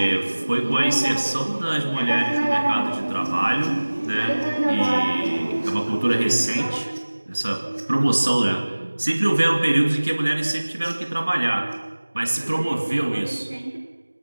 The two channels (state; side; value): inverted; both; correlation -1.00